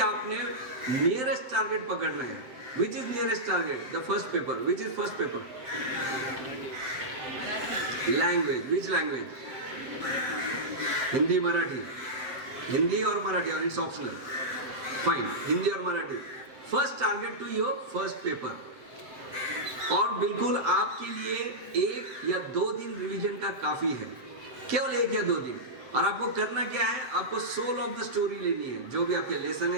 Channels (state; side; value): late; left; 7.7 ms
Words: नियरेस्ट टारगेट पकड़ना है। Which is nearest target? The first paper. Which is first paper? Language. Which language? Hindi Marathi. Hindi और मराठी, और इट्स ऑप्शनल, फाइन, हिंदी और Marathi. First target to your first paper. और बिल्कुल आपके लिए 1 या 2 दिन रिवीजन का काफी है, केवल 1 या 2 दिन। और आपको करना क्या है? आपको सोल ऑफ द स्टोरी लेनी है, जो भी आपके लेसन